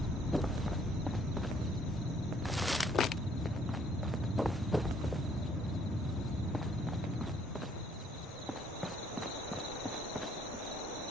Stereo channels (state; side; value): normal; both; correlation 0.65